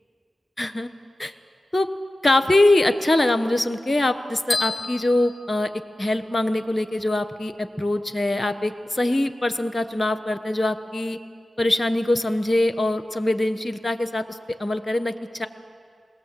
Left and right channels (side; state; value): both; normal; correlation 0.95